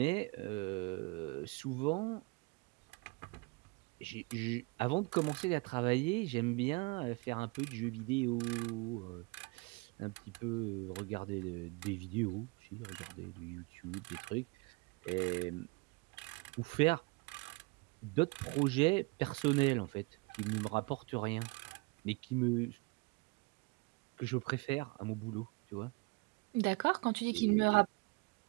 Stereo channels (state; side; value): quieter; left; 27.6 dB